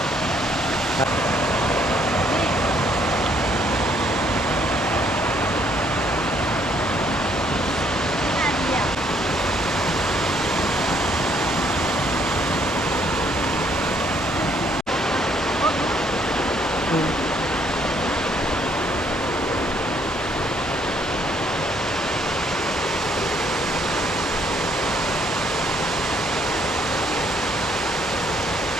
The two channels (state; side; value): normal; both; correlation 0.67